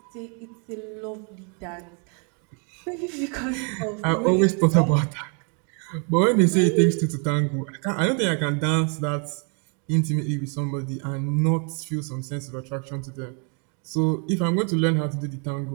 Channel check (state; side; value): quieter; left; 38.1 dB